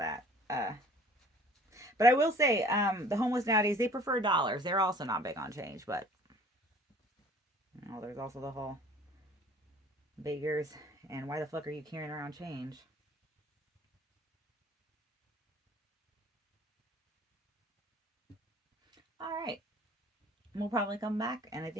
But I will say, the homeless nowadays they prefer dollars. They're also not big on change, but there's also the whole beggars and why the fuck are you carrying around change? All right, we'll probably come back, and I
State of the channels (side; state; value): both; normal; correlation 0.51